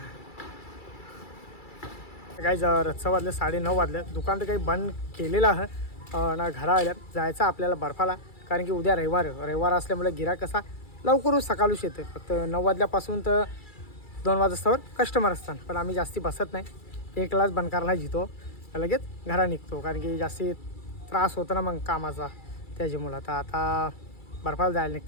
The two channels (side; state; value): right; late; 2.3 ms